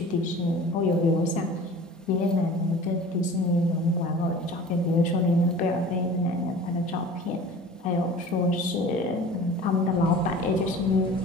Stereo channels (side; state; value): both; normal; correlation 0.42